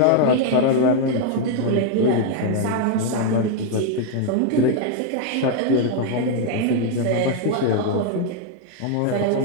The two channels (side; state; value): both; different; correlation 0.00